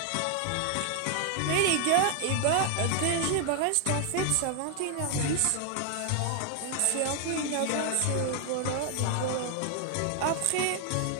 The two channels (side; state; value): both; different; correlation 0.00